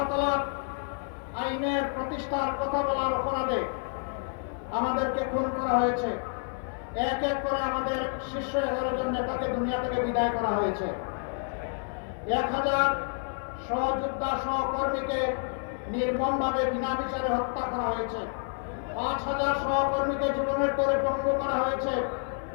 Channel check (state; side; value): silent; right; 58 dB below the other